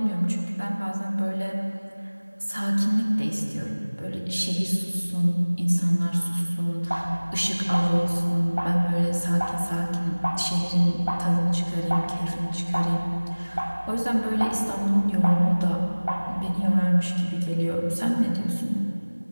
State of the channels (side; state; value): both; inverted; correlation -1.00